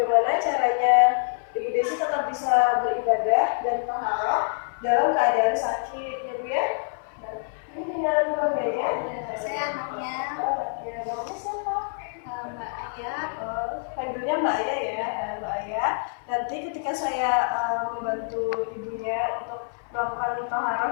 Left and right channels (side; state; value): right; silent; digital silence